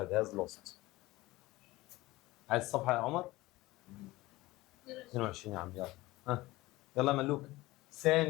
has lost. عايز الصفحه يا عمر؟ 22 يا عم. يلا يلا ملوك.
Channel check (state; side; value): quieter; right; 19.4 dB